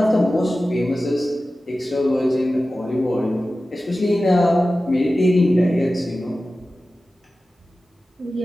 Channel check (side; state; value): both; normal; correlation 0.95